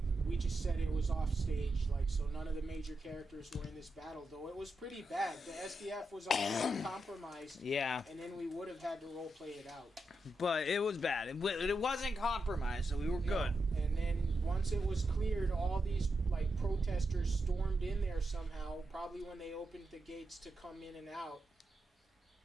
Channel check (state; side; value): normal; both; correlation 0.86